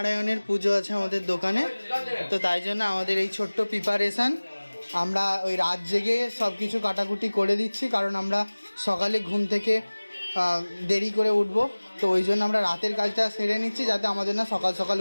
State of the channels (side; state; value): both; inverted; correlation -1.00